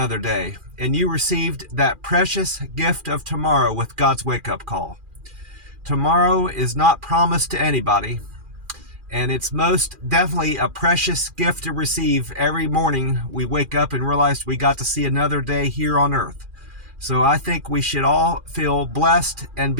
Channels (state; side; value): late; left; 2.4 ms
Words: day, and you received that precious gift of tomorrow with God's wake-up call. Tomorrow is not promised to anybody, and it's most definitely a precious gift to receive every morning we wake up and realize we got to see another day here on earth. So I think we should all feel blessed and